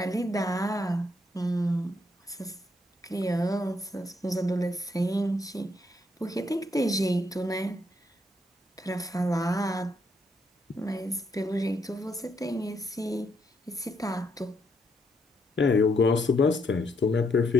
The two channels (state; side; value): normal; both; correlation 0.75